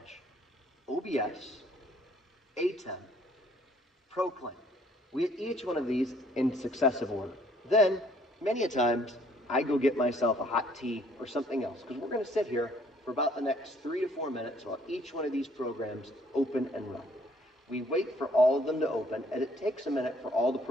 OBS, ATEM, Proclaim. We hit each one of these in successive order. Then, many a times, I go get myself a hot tea or something else, because we're going to sit here for about the next 3 to 4 minutes while each one of these programs open and run. We wait for all of them to open, and it takes a minute for all the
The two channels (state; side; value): normal; both; correlation 0.62